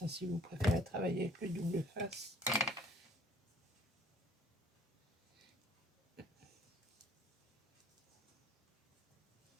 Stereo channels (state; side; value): normal; both; correlation 0.56